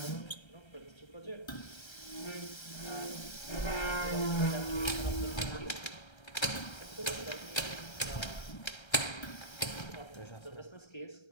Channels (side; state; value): right; late; 1.3 ms